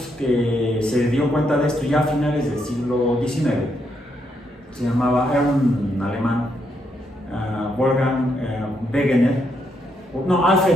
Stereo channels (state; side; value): normal; both; correlation 0.77